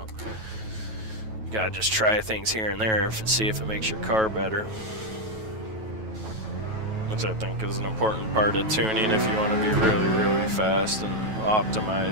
you gotta just try things here and there and see if it makes your car better. Which I think is an important part of tuning if you want to be really, really fast and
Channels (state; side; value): late; left; 9.2 ms